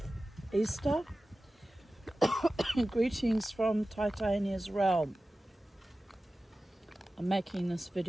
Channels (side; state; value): both; normal; correlation 0.95